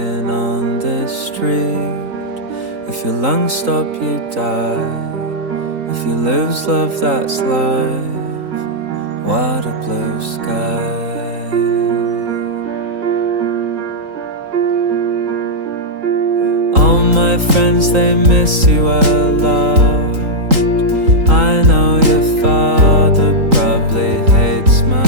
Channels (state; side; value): late; left; 3.8 ms